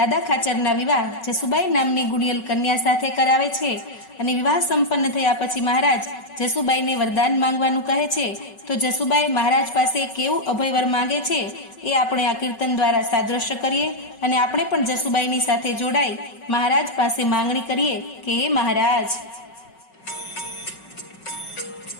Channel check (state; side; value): late; right; 5.4 ms